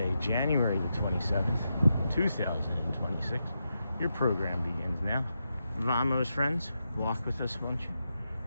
January the 27th, 2026. Your program begins now. Vamos, friends. Walk with us, won't you?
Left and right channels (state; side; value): inverted; both; correlation -0.86